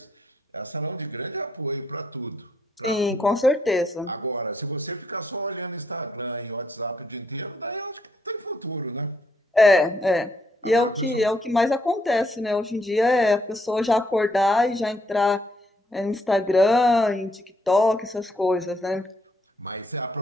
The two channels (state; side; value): normal; both; correlation 0.73